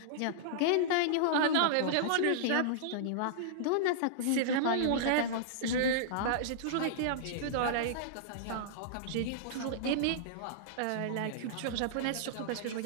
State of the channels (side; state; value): both; different; correlation -0.02